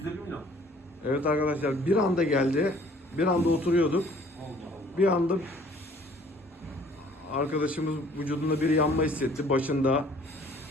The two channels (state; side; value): normal; both; correlation 0.55